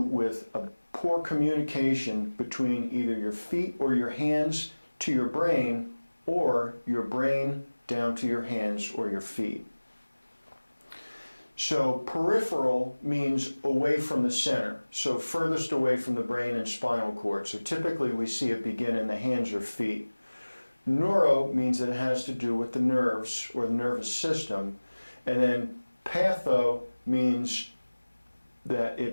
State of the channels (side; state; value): both; inverted; correlation -1.00